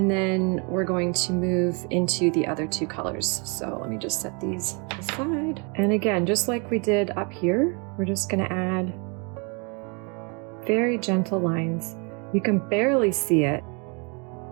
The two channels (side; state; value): left; quieter; 33.4 dB